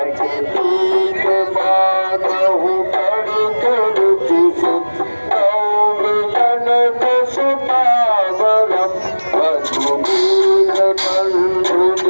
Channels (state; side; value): inverted; both; correlation -1.00